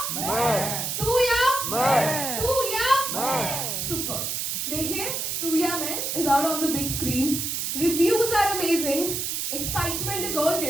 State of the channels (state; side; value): noise; right; hiss, 2 dB below the sound